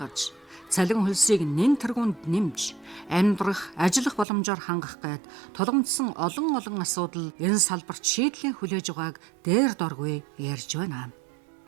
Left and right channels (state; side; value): drops out; left; at 4.2 s